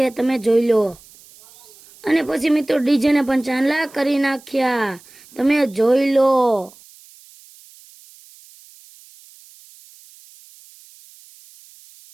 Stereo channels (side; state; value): right; noise; hiss, 25 dB below the sound